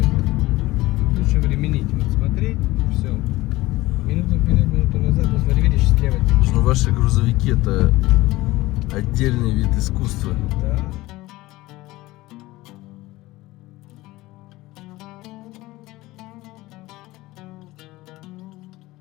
Лучше временить. Вот смотреть, все. Минуту вперед, минуту назад. Вот смотри, видишь, слева. Ну, ваши грузовики это отдельный вид искусства. Да.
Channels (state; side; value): quieter; right; 18.8 dB